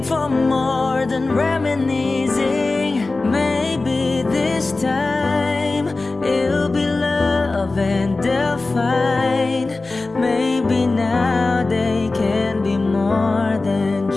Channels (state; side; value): quieter; right; 3.4 dB